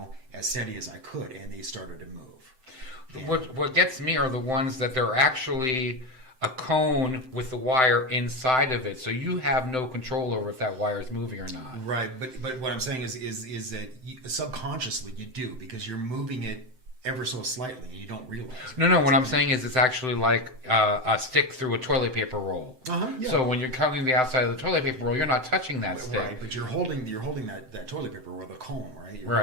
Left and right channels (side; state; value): left; late; 7.8 ms